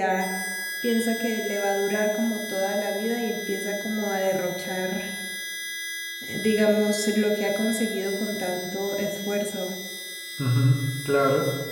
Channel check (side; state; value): both; identical; correlation 1.00